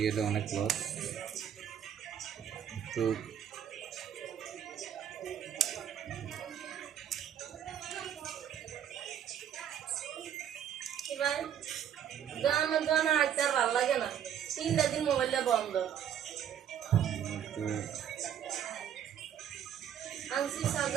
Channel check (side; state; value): left; quieter; 9.5 dB